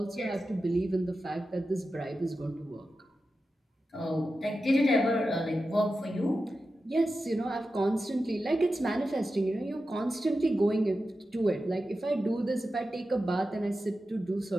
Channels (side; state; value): both; normal; correlation 0.92